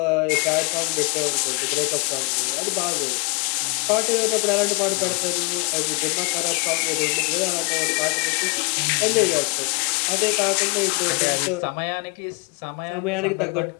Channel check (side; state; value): right; quieter; 32.1 dB